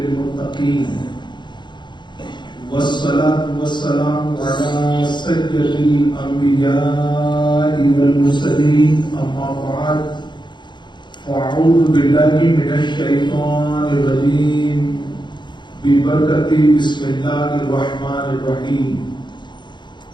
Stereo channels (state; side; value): late; right; 0.22 ms